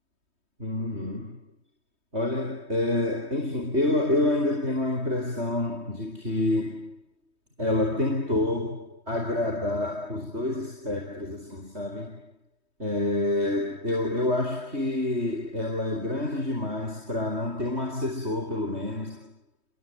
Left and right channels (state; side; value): late; left; 3.2 ms